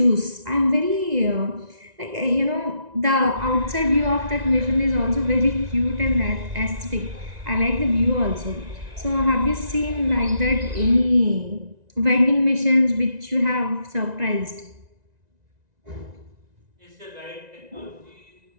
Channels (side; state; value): left; late; 1.9 ms